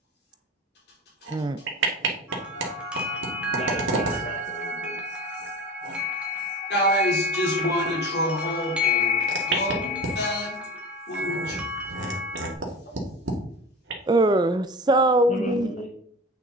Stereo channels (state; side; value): normal; both; correlation 0.32